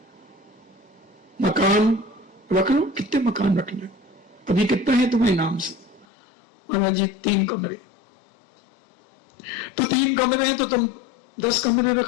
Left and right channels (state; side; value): drops out; right; at 6.1 s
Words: मकान रख लो, कितने मकान रखना है, अभी कितना है तुम्हें नाम से। महाराज जी 3 कमरे, तो 3 कमरे हैं तो तुम 10 कमरे